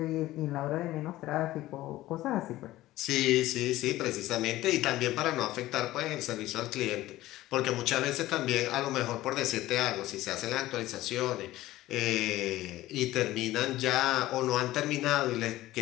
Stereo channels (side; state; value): right; quieter; 16.2 dB